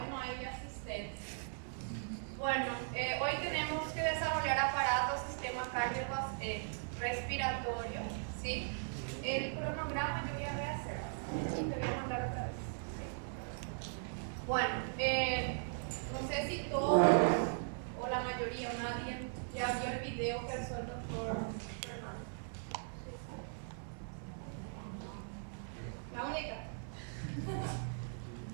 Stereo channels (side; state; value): left; silent; 52 dB below the other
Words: no hay asistencia. Bueno, hoy tenemos que desarrollar aparatos, sistema cardiorrespiratorio, ¿sí? El cronograma yo voy a rehacer. Te voy a mandar otra vez. ¿Sí? Bueno, no sé si todos o la mayoría o nadie ya vio el video que hizo el doctor Fernando. La única.